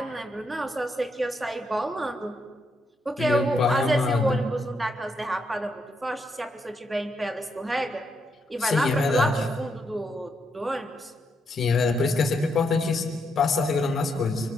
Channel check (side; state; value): both; normal; correlation 0.79